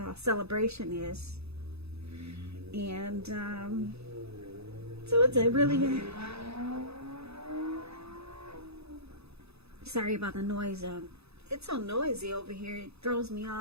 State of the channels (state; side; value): late; left; 0.79 ms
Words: celebration is. And so it's a really sorry about the noise. It's so noisy over here. It throws me